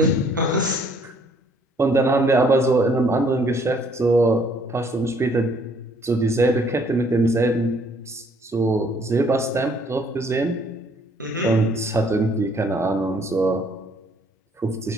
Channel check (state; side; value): normal; both; correlation 0.63